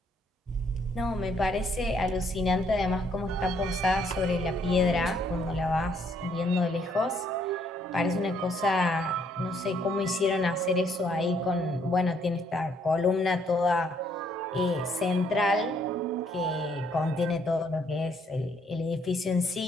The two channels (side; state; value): both; normal; correlation 0.68